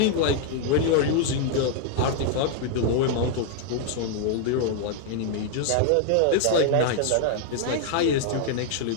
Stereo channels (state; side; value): different; both; correlation 0.00